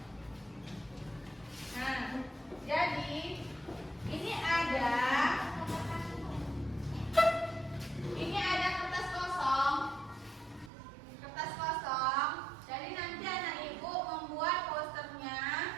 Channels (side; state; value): left; drops out; at 10.7 s